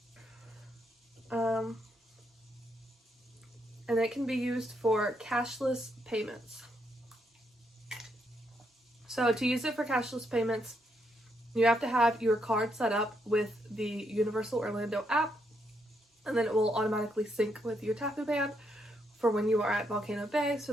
And it can be used for cashless payments. So to use it for cashless payments, you have to have your card set up with the Universal Orlando app, and then it will automatically sync with your Tapu band for when you are at Volcano Bay, so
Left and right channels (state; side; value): normal; both; correlation 0.77